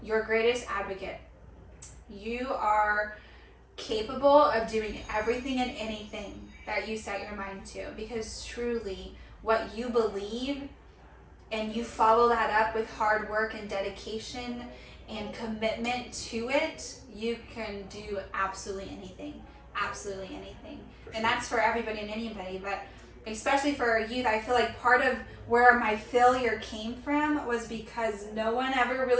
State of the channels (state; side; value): identical; both; correlation 1.00